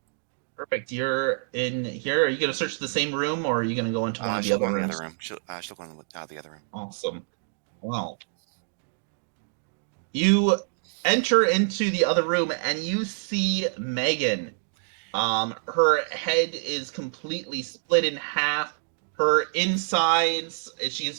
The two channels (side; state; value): left; silent; digital silence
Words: Perfect. You're in here. Are you gonna search the same room, or are you gonna go into one of the She'll other go in the rooms? other room. She'll go in the other room. Wow. You enter into the other room and you see Megan. Her head is completely split in half. Her insides, she has